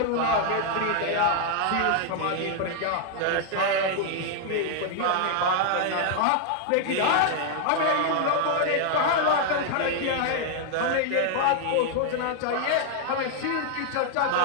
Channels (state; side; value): different; both; correlation 0.00